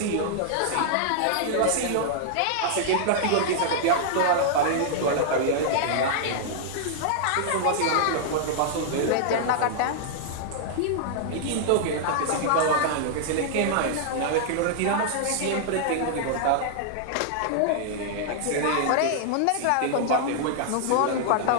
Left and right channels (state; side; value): different; both; correlation -0.01